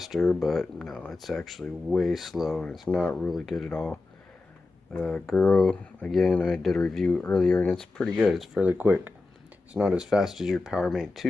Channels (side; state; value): right; quieter; 3.5 dB